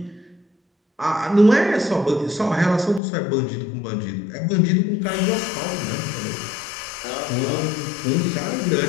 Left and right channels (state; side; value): drops out; right; at 3.0 s